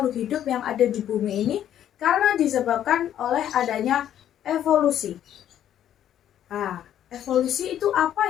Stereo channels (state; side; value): quieter; right; 10.8 dB